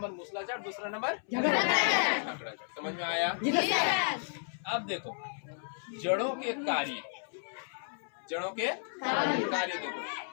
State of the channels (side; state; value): right; silent; 56 dB below the other